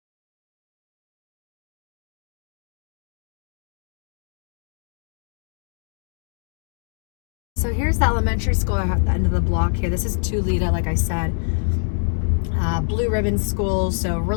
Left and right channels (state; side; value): silent; right; 62 dB below the other